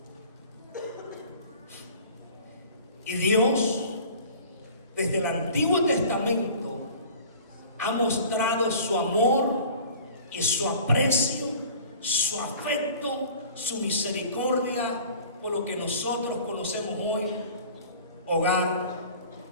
Y Dios, desde el Antiguo Testamento, ha mostrado su amor y su aprecio, su afecto, su misericordia por lo que nosotros conocemos hoy: hogar,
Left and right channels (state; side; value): inverted; both; correlation -0.45